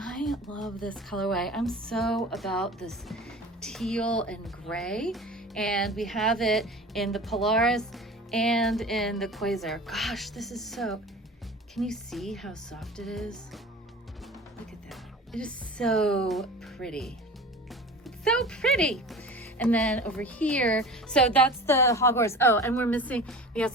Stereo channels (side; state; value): both; normal; correlation 0.37